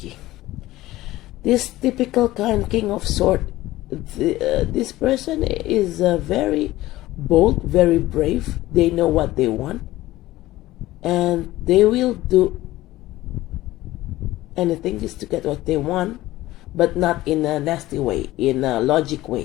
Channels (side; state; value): right; quieter; 16.8 dB